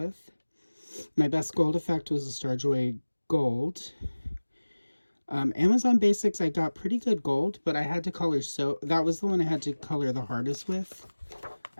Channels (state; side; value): inverted; both; correlation -1.00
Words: My best gold effect was the Starjoy Gold. Amazon Basics, I got pretty good gold, but I had to color, so that was the one I had to color the hardest with,